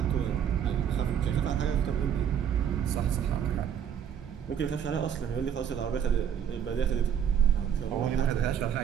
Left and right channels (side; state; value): left; quieter; 8.7 dB